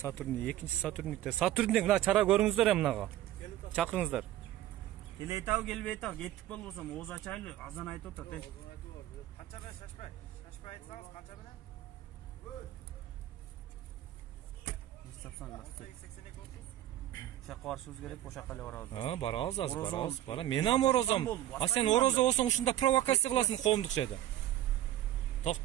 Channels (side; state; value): left; quieter; 13.3 dB